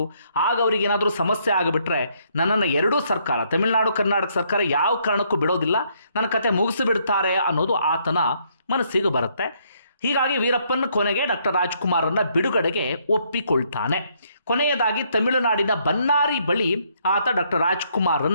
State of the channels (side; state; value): both; inverted; correlation -0.70